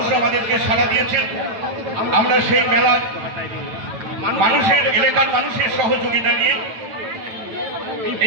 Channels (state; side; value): late; left; 9.0 ms